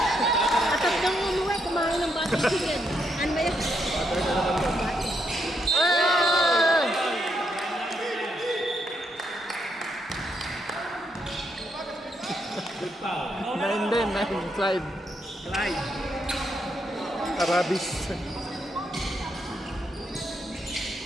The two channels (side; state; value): both; normal; correlation 0.78